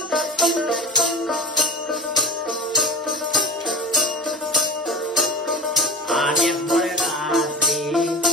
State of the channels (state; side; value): normal; both; correlation 0.31